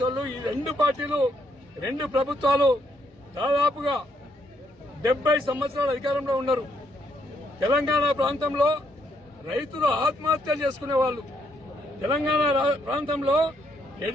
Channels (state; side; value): normal; both; correlation 0.74